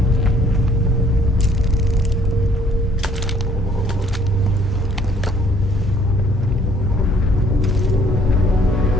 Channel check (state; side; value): normal; both; correlation 0.61